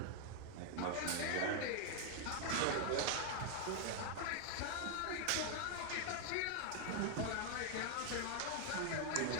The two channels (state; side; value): different; both; correlation 0.00